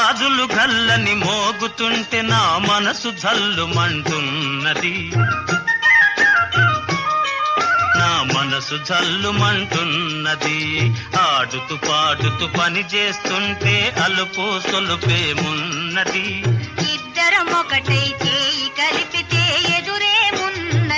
గల్లని మోగుతుంటే నా మనసు జల్లుమంటున్నది, నా మనసు జల్లుమంటున్నది. ఆడుతూ పాడుతూ పని చేస్తుంటే అలుపు సొలుపేమున్నది. ఇద్దరం ఒకటై చేయి కలిపితే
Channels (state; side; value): identical; both; correlation 1.00